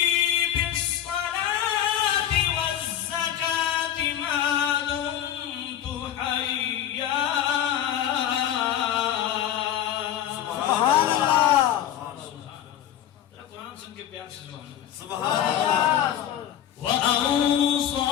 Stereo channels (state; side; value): quieter; right; 10.9 dB